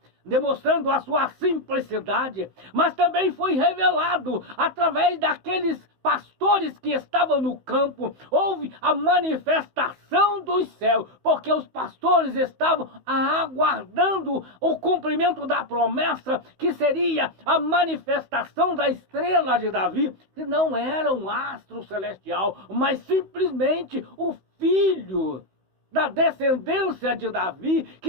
demonstrando a sua simplicidade, mas também foi revelado através daqueles pastores que estavam no campo. Houve a manifestação dos céus, porque os pastores estavam aguardando o cumprimento da promessa, que seria a manifestação da estrela de Davi, que não era um astro celestial, mas simplesmente o filho da descendência de Davi,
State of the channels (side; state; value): left; late; 16 ms